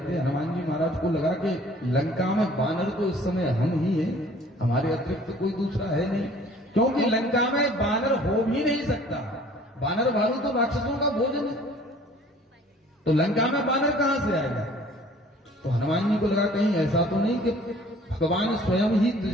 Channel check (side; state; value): both; normal; correlation 0.52